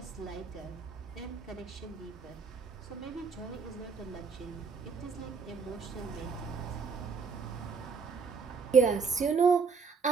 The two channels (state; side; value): quieter; left; 5.3 dB